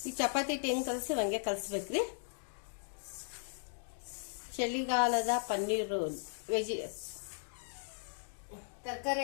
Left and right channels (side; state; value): right; silent; digital silence